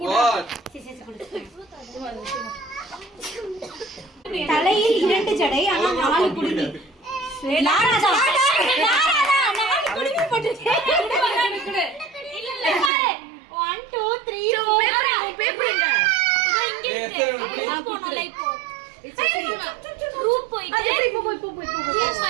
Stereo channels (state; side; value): drops out; left; at 12.9 s